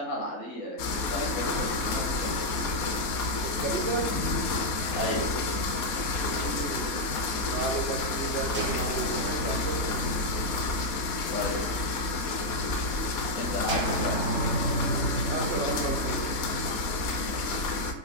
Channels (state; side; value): late; right; 4.2 ms